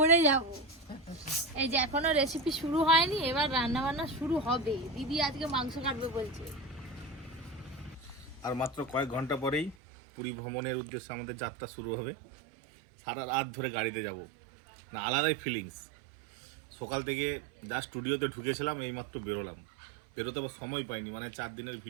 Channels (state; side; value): drops out; left; at 9.8 s